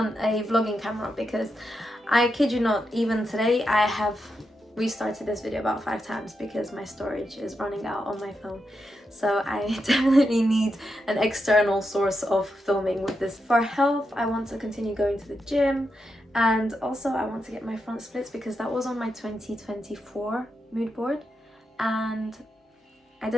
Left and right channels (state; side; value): normal; both; correlation 0.85